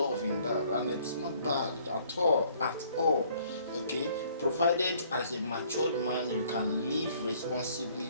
in that, and it's not bad at all. Okay, provided as a matured man you can live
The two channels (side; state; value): both; inverted; correlation -0.60